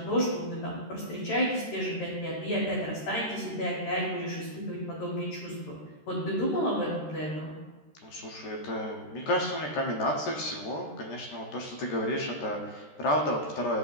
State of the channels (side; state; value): right; late; 13 ms